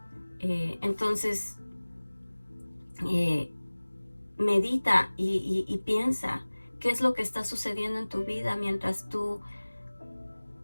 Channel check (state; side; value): inverted; both; correlation -1.00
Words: Entonces, medita y piensa qué es lo que está sucediendo en tu vida mientras tú